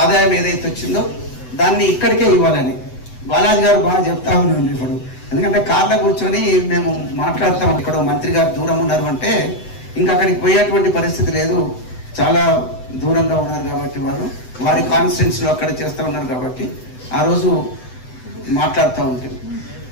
ఏదైతే వచ్చిందో దాన్ని ఇక్కడికే ఇవ్వాలని బాలాజీ గారు బాగా చెప్తా ఉన్నాను. ఇప్పుడు ఎందుకంటే కార్లో కూర్చొని మేము మాట్లాడతాం, ఇక్కడ మంత్రి గారు దూరం ఉన్నారు అంటే ఇంకా అక్కడికి పోయేటువంటి పరిస్థితి లేదు. చాలా దూరంగా ఉన్నారు కాబట్టి వారి కాన్స్టిట్యున్సీలో అక్కడ చేస్తూ ఉన్నారు కాబట్టి ఆ రోజు మాట్లాడుతూ ఉంటుంది.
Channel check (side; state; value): right; late; 7.9 ms